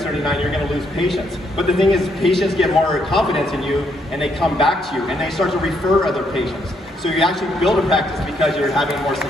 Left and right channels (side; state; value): both; normal; correlation 0.73